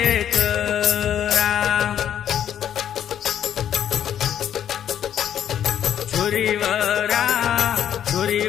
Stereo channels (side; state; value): right; quieter; 9.9 dB